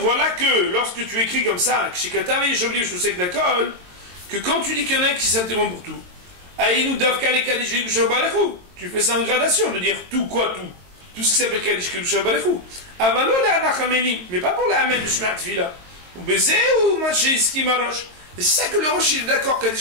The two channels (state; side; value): late; left; 22 ms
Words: que lorsque tu écris comme ça, que quand tu dis qu'il y en a un qui s'interrompt pour tout, tu fais ça en gradation, de dire tout quoi tout. Tout ce qui s'appelle Kaddish Kedusha Barechu. Mais pas pour la Amen de Shema Tfila. Ou Bézé ou Maché Marosh. Et c'est ça que le Rosh il est d'accord,